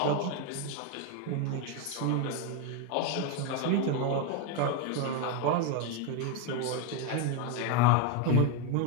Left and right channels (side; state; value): both; different; correlation 0.02